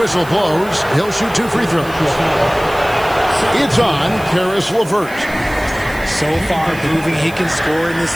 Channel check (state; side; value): noise; right; hiss, 19 dB below the sound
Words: blows. He'll shoot 2 free throws. It's on Karis LeVert. So far proving he can score in